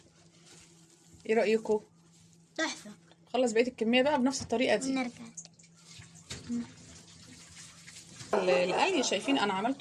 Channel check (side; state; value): both; identical; correlation 1.00